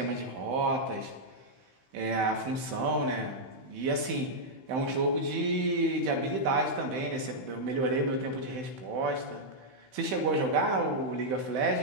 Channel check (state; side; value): late; left; 16 ms